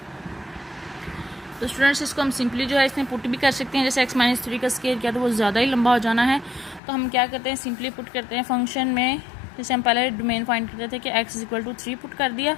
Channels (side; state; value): right; drops out; at 6.8 s